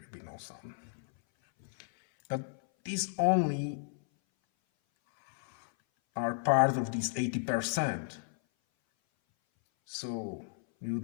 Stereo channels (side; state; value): right; silent; 56 dB below the other